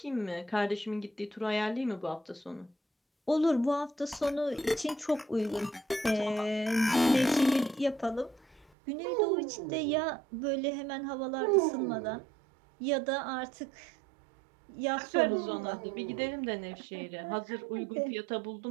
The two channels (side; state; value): left; drops out; at 8.7 s